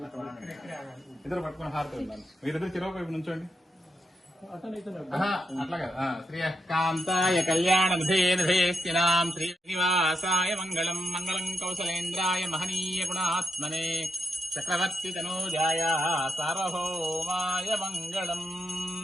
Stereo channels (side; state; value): both; normal; correlation 0.83